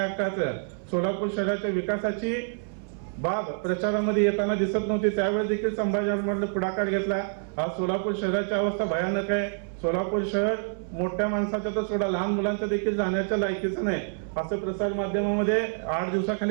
हक्काचं, सोलापूर शहराच्या विकासाची बाब प्रचारामध्ये येताना दिसत नव्हती. त्यावेळेस देखील संभाजी आरमारने पुढाकार घेतला. आज सोलापूर शहराची अवस्था भयानक आहे. सोलापूर शहर मोठ्या माणसाच्या तर सोडा लहान मुलांच्या देखील जाण्याच्या लायकीचं नाही असं प्रसार माध्यमामध्ये 8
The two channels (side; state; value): left; silent; 60 dB below the other